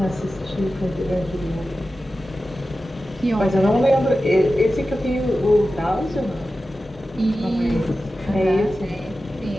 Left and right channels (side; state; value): both; normal; correlation 0.94